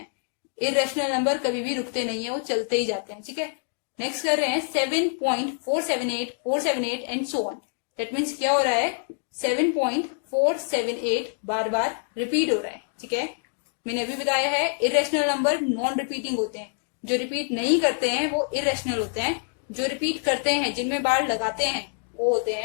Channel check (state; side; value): silent; right; digital silence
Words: इररेशनल नंबर कभी भी रुकते नहीं है, वो चलते ही जाते हैं। ठीक है, नेक्स्ट कर रहे हैं 7.478 478 and so on. That means क्या हो रहा है, 7.478 बार बार रिपीट हो रहा है। ठीक है, मैंने अभी बताया है इररेशनल नंबर नॉन रिपीटिंग होते हैं, जो रिपीट नहीं करते हैं वो इररेशनल होते हैं। जो रिपीट करते हैं, जिनमें बार लगाते हैं, वो होते